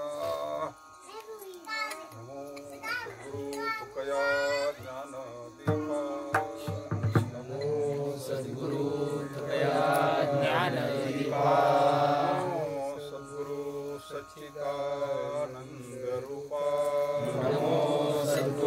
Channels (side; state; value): both; identical; correlation 1.00